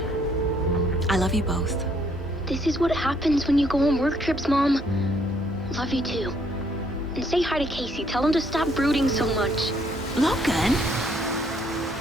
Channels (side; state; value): both; normal; correlation 0.67